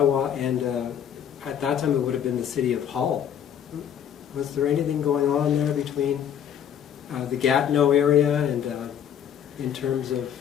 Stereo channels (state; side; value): quieter; right; 9.1 dB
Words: and, at that time it would have been the City of Hull? Was there anything going on there between the Gatineau area and in terms